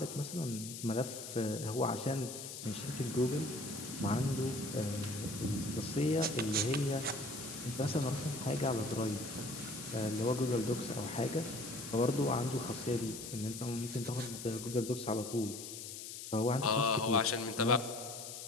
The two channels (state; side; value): noise; left; hiss, 9 dB below the sound